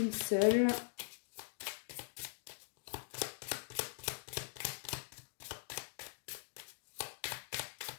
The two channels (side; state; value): right; silent; digital silence